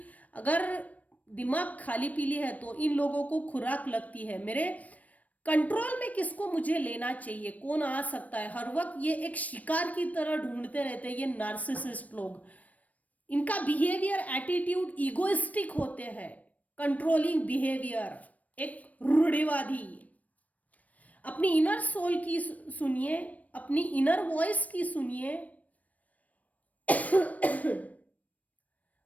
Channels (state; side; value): late; right; 0.070 ms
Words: अगर दिमाग खाली पीली है तो इन लोगों को खुराक लगती है। मेरे कंट्रोल में किसको मुझे लेना चाहिए, कौन आ सकता है, हर वक्त ये एक शिकार की तरह ढूंढते रहते हैं ये नार्सिसिस्ट लोग। इनका बिहेवियर, एटीट्यूड इगोइस्टिक होते हैं, कंट्रोलिंग बिहेवियर, एक रूढ़िवादी। अपनी इनर सोल की सुनिए, अपनी इनर वॉइस की सुनिए।